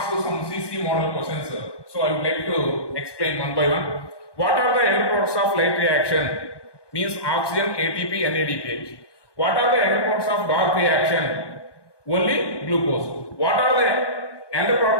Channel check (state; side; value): late; right; 1.2 ms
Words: you some CC model questions. So I would like to explain one by one. What are the end products of light reaction? Means oxygen, ATP, NADPH. What are the end products of dark reaction? Only glucose. What are the end